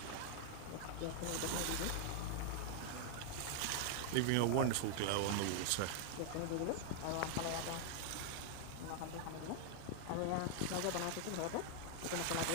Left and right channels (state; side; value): different; both; correlation 0.00